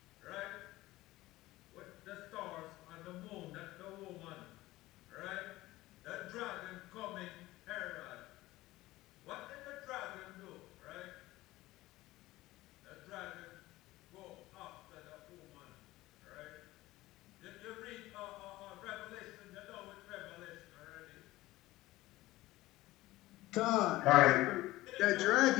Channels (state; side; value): quieter; right; 17.8 dB